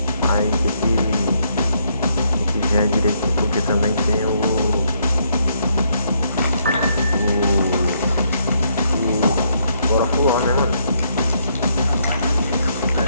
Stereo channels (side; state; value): both; inverted; correlation -0.73